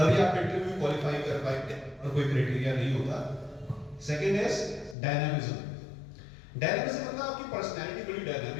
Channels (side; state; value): right; drops out; at 5.0 s